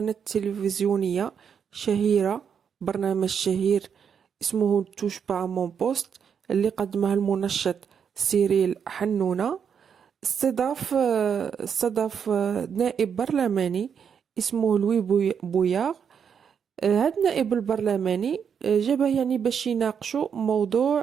تلفزيونية شهيرة، برنامج شهير اسمه توش با مون بوست اللي قدمه المنشط سيريل حنونة. استضاف نائب برلماني اسمه لوي بوياغ. هاد النائب البرلماني جابه يعني باش يناقشوا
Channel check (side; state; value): left; quieter; 7.3 dB